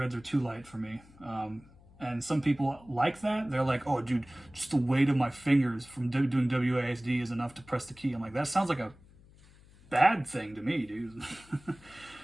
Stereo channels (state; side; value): noise; left; hum, 25 dB below the sound